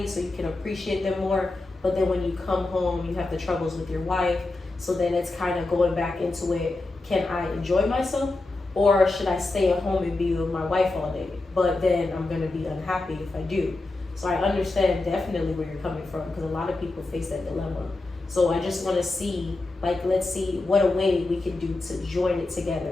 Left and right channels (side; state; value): right; quieter; 3.1 dB